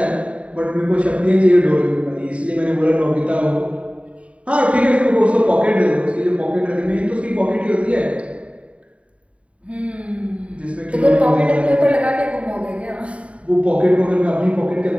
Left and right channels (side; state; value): left; late; 0.063 ms